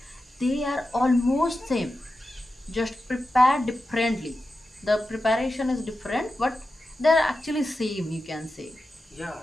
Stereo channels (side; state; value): both; normal; correlation 0.91